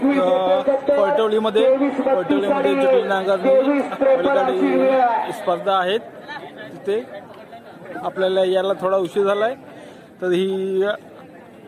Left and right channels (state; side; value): identical; both; correlation 1.00